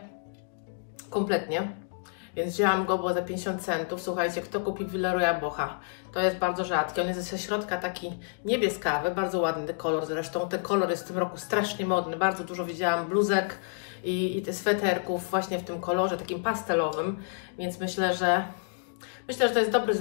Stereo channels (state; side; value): silent; right; digital silence